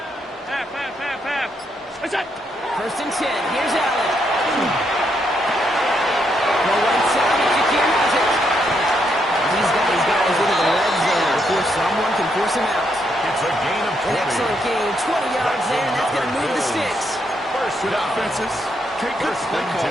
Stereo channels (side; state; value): both; normal; correlation 0.77